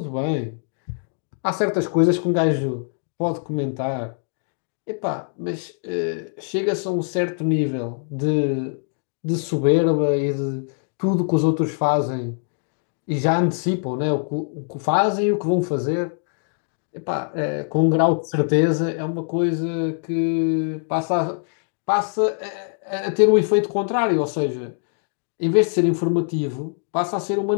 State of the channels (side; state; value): right; silent; 56 dB below the other